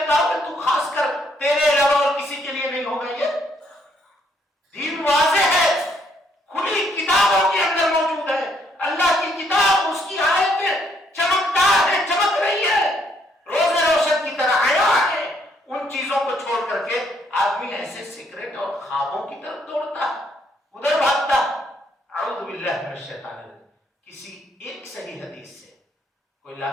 کہا کہ تو خاص کر تیرے علاوہ اور کسی کے لیے نہیں ہوگا؟ یہ دین واضح ہے، کھلی کتابوں کے اندر موجود ہے۔ اللہ کی کتاب، اس کی آیتیں چمکدار ہے، چمک رہی ہے، روز روشن کی طرح آیا ہے۔ ان چیزوں کو چھوڑ کر کے آدمی ایسے سیکرٹ اور خوابوں کی طرف دوڑتا، ادھر بھاگتا۔ اعوذ باللہ من الشیطان الرجیم۔ کسی ایک صحیح حدیث سے کوئی لا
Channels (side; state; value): both; normal; correlation 0.70